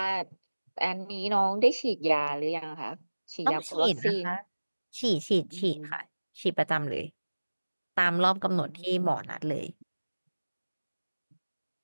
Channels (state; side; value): inverted; both; correlation -1.00